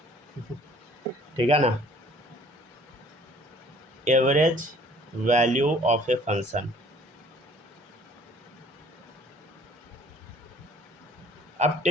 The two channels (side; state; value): both; normal; correlation 0.55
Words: ठीक है ना? Average value of a function. अब